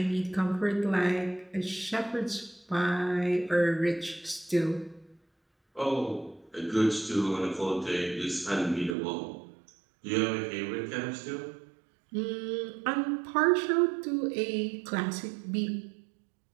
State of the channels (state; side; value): drops out; left; at 9.0 s